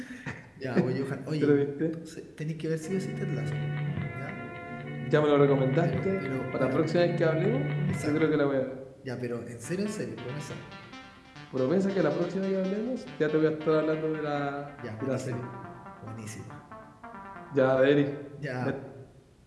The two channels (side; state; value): both; identical; correlation 1.00